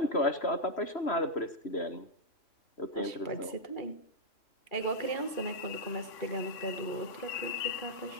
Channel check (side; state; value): right; late; 3.0 ms